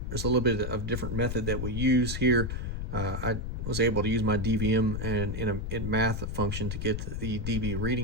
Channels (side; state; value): left; noise; rumble, 3 dB below the sound